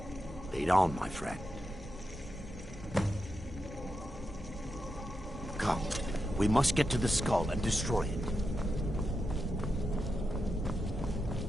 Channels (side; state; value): both; normal; correlation 0.87